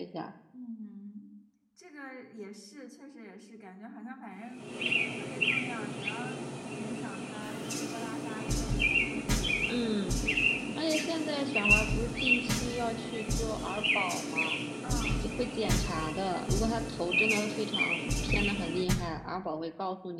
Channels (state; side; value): identical; both; correlation 1.00